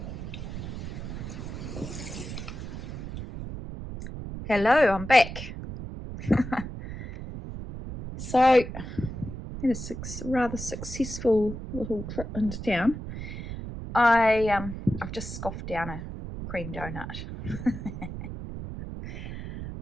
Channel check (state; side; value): noise; right; rumble, 8 dB below the sound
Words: Hello, I'm back. So, I had a rather successful little trip into town. I've just scoffed down a cream donut.